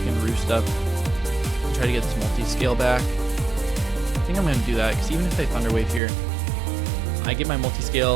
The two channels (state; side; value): drops out; left; at 6.0 s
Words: Roost up and try to get this multi-scale back. I think I'm going to do that, because even if they Thunder Wave here, I get my